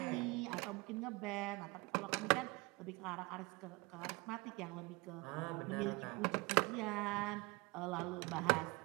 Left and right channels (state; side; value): quieter; left; 25.2 dB